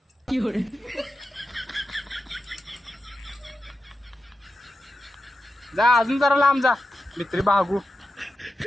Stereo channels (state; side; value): normal; both; correlation 0.90